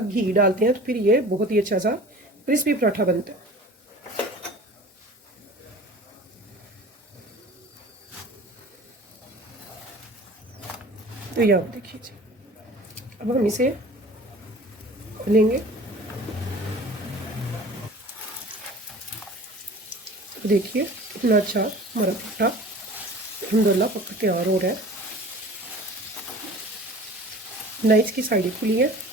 डालते हैं तो फिर ये बहुत ही अच्छा सा क्रिस्पी पराठा बनता है। तो ये आप देखिए जी, अब हम इसे लेंगे। तो देखिए कितना अच्छा हमारा पराठा अल्हम्दुलिल्लाह पक के तैयार हो रहा है। ना इसकी साइडें खुली है,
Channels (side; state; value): both; normal; correlation 0.42